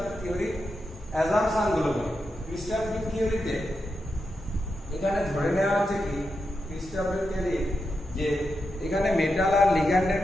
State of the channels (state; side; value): normal; both; correlation 0.87